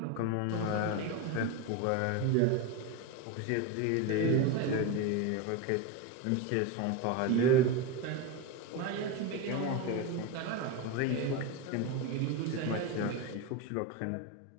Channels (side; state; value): both; different; correlation 0.04